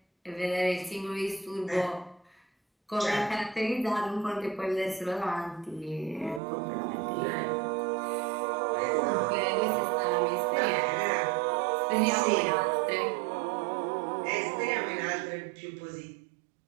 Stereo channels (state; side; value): drops out; left; at 6.4 s